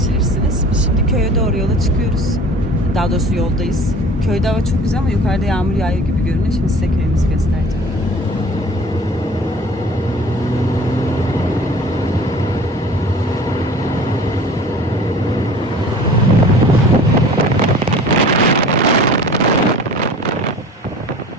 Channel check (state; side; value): normal; both; correlation 0.45